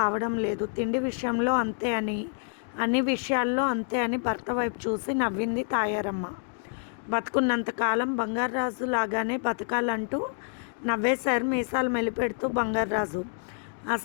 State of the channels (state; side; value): silent; right; 59 dB below the other